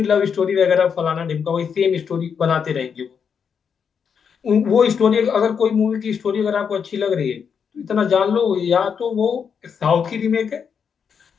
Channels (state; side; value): quieter; right; 6.8 dB